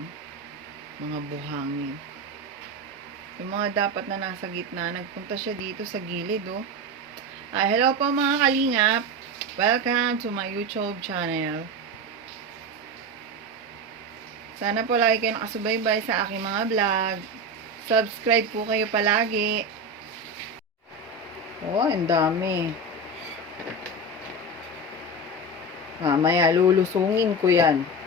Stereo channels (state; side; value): normal; both; correlation 0.21